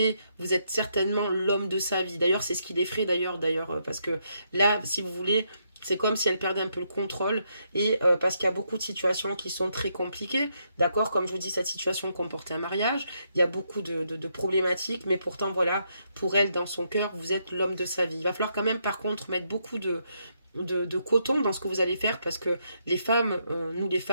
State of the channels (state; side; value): inverted; both; correlation -0.77